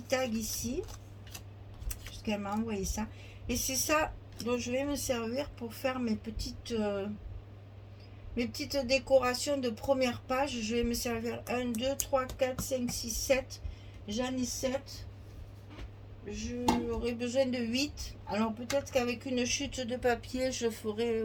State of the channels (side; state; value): both; identical; correlation 1.00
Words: tags ici. Puisqu'elle m'a envoyé ça. Et c'est ça dont je vais me servir pour faire mes petites décorations de première page. Je vais me servir 1, 2, 3, 4, 5, 6, 7. J'en ai 7. J'aurai besoin de 8. Alors peut-être qu'avec une chute de papier, je ferai